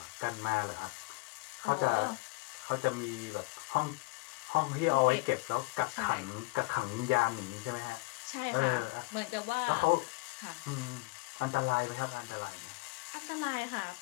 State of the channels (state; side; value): quieter; right; 25.3 dB